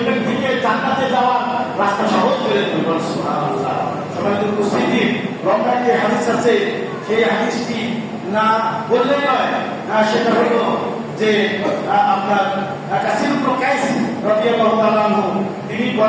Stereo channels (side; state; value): both; identical; correlation 1.00